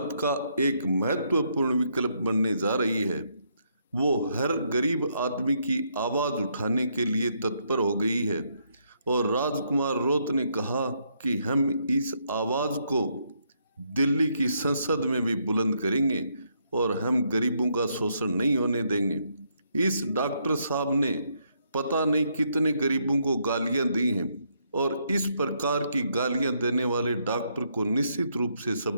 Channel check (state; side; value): inverted; both; correlation -0.75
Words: का एक महत्वपूर्ण विकल्प बनने जा रही है। वो हर गरीब आदमी की आवाज़ उठाने के लिए तत्पर हो गई है और राजकुमार रौत ने कहा कि हम इस आवाज़ को दिल्ली की संसद में भी बुलंद करेंगे और हम गरीबों का शोषण नहीं होने देंगे। इस डॉक्टर साहब ने पता नहीं कितने गरीबों को गालियां दी हैं और इस प्रकार की गालियां देने वाले डॉक्टर को निश्चित रूप से